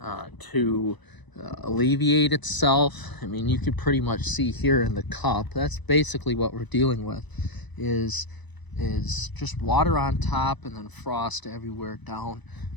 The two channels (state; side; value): late; right; 1.0 ms